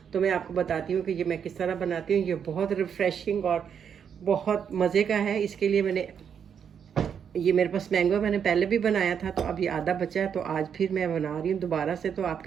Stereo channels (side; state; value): left; quieter; 7.7 dB